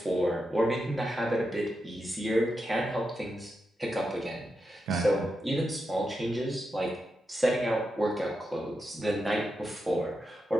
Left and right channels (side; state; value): both; normal; correlation 0.87